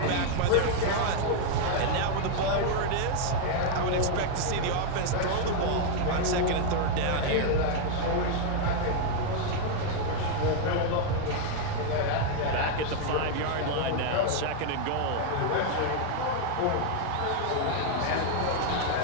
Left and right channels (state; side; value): different; both; correlation 0.00